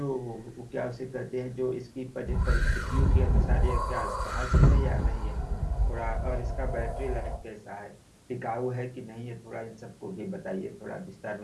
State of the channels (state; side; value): identical; both; correlation 1.00